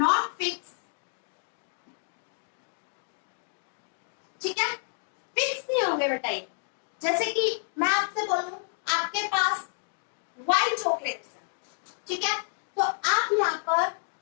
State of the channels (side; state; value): right; silent; digital silence